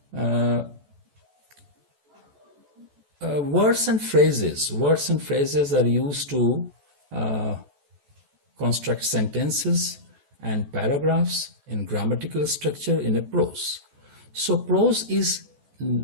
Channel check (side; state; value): left; late; 14 ms